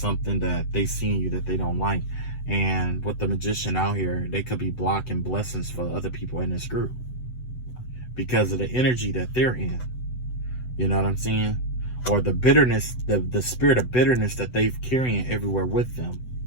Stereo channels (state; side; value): late; right; 8.0 ms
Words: that they see in you that they don't like. And with the magician out here, they could be blocking blessings for other people in this group because of the energy that they're in. You know what I'm saying? Or the bitterness, the spirit of bitterness that they've carrying everywhere with them.